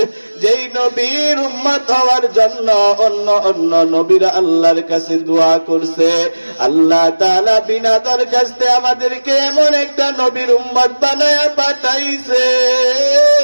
যেই নবীর উম্মত হওয়ার জন্য অন্য অন্য নবীরা আল্লাহর কাছে দোয়া করছে। আল্লাহ তাআলা বিনা দরখাস্তে আমাদেরকে এমন একটা নবীর উম্মত বানায়া পাঠাইছে,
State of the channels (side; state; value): both; inverted; correlation -1.00